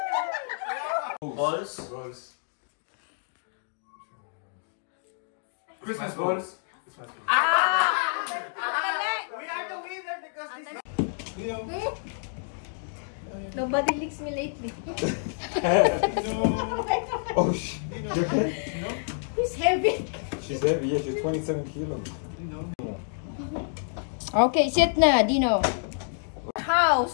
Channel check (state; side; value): silent; right; digital silence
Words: first goals. We are the winner because this Nobody licks me lately. Oh shit. Who's heavy? She's heavy, yeah, she's 27 kilos. Okay, sit na, Dino.